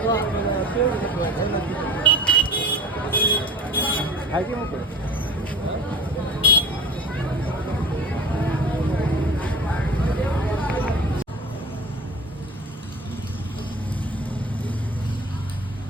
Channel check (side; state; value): both; normal; correlation 0.38